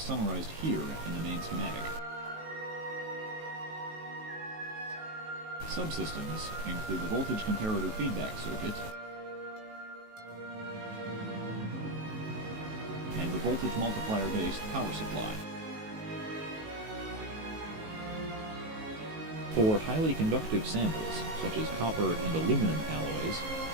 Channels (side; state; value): left; late; 19 ms